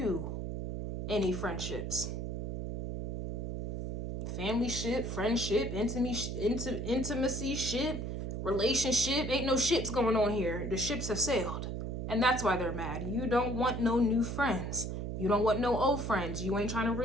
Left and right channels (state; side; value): noise; right; hum, 3 dB below the sound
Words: any friendships. Family ship, friendship, intimacy ship, relationship. Ain't no ships going on here. The ships have sailed. And that's why they're mad. You don't want no new friends. You don't want no old friends. You ain't trying to